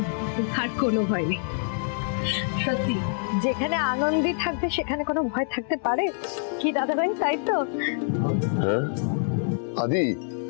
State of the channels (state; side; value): silent; right; 61 dB below the other